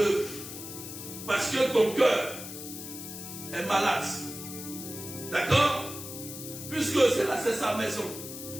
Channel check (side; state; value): left; noise; hiss, 10 dB below the sound